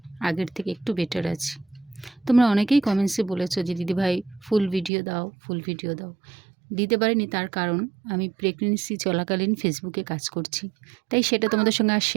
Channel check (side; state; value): left; drops out; at 4.9 s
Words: আগের থেকে একটু বেটার আছি। তোমরা অনেকেই কমেন্টসে বলেছো যে দিদিভাই ফুল ভিডিও দাও, ফুল ভিডিও দাও। দিতে পারিনি, তার কারণ আমি প্রেগনেন্সি চলাকালীন ফেসবুকে কাজ করছি, তাই সেটা তোমাদের সঙ্গে আর